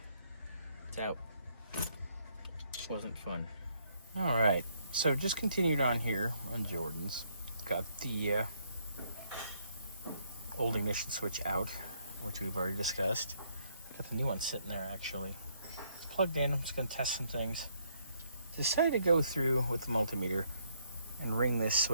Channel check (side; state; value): both; inverted; correlation -0.70